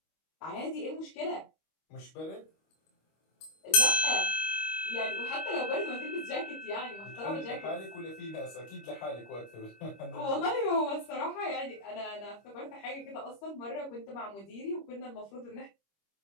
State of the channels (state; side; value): late; right; 25 ms